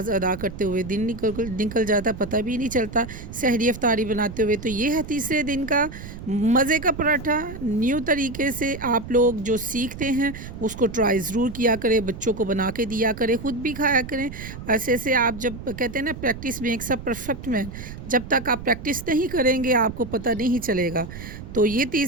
अदा करते हुए दिन निकल जाता, पता भी नहीं चलता सहरी अफ्तारी बनाते हुए। तो ये है तीसरे दिन का मज़े का पराठा। न्यू तरीके से आप लोग जो सीखते हैं उसको ट्राई ज़रूर किया करें, बच्चों को बना के दिया करें, ख़ुद भी खाया करें। ऐसे ऐसे आप जब कहते हैं ना practice makes a perfect man, जब तक आप प्रैक्टिस नहीं करेंगे आपको पता नहीं चलेगा। तो ये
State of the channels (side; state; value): right; noise; rumble, 11 dB below the sound